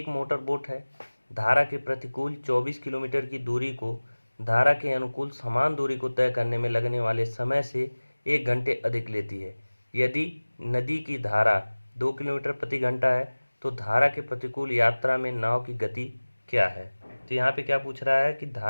मोटर बोट है, धारा के प्रतिकूल 24 किलोमीटर की दूरी को धारा के अनुकूल समान दूरी को तय करने में लगने वाले समय से 1 घंटे अधिक लेती है। यदि नदी की धारा 2 किलोमीटर प्रति घंटा है तो धारा के प्रतिकूल यात्रा में नाव की गति क्या है। तो यहाँ पे क्या पूछ रहा है कि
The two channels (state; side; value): inverted; both; correlation -1.00